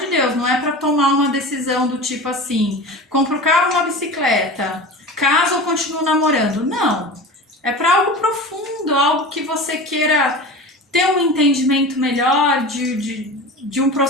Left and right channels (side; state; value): both; normal; correlation 0.32